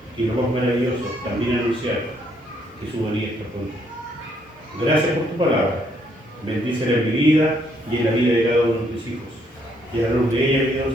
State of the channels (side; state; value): both; normal; correlation 0.70